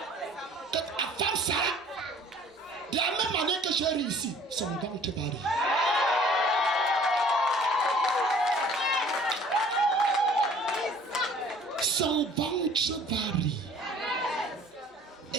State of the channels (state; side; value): normal; both; correlation 0.52